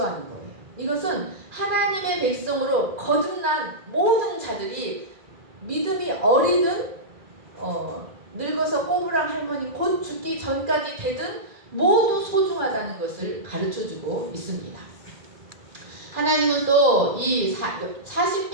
거예요. 이것은 하나님의 백성으로 거듭난 모든 자들이 믿음이 어리든 늙어서 꼬부랑 할머니 곧 죽기 전까지 되든 모두 소중하다는 것을 가르쳐주고 있습니다. 하나님은 또 이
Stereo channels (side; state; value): left; late; 2.4 ms